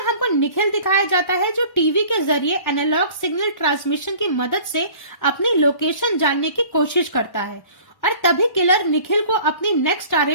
हमको निखिल दिखाया जाता है जो टीवी के जरिए एनालॉग सिग्नल ट्रांसमिशन की मदद से अपनी लोकेशन जानने की कोशिश करता है और तभी किलर निखिल को अपनी नेक्स्ट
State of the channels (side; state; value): right; late; 1.1 ms